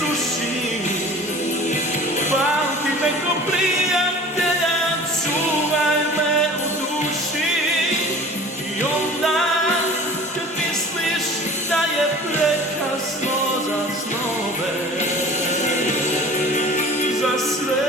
pamti me ko plin.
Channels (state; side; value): normal; both; correlation 0.43